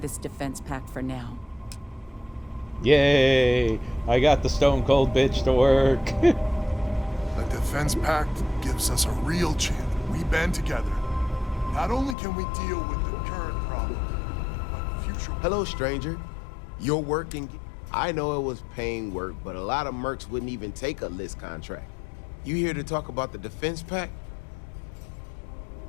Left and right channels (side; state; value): right; drops out; at 12.2 s